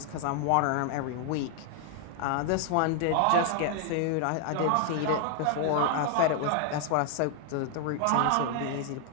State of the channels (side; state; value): both; different; correlation 0.00